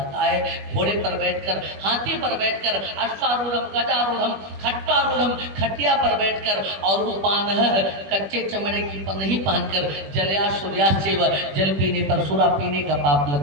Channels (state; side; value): late; left; 21 ms